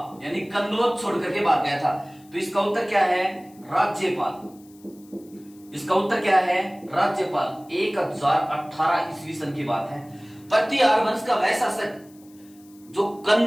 यानी कन्नौज छोड़कर के भाग गया था। तो इसका उत्तर क्या है? राज्यपाल। इसका उत्तर क्या है? राज्यपाल। 1018 ईस्वी सन की बात है। प्रतिहार वंश का वह शासक जो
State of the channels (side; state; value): left; noise; hiss, 28 dB below the sound